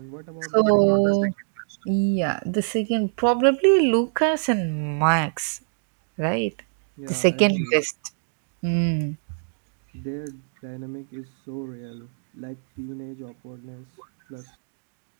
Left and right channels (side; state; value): left; silent; digital silence